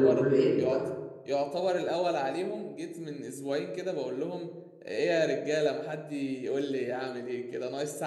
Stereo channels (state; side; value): identical; both; correlation 1.00